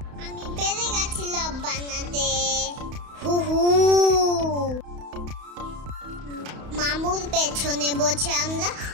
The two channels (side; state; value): left; late; 31 ms